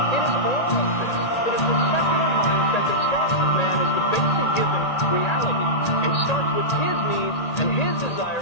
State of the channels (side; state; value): right; late; 1.8 ms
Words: It is all of this. It is the secular mindset that starts with man as the basic given reality, and starts with his needs and his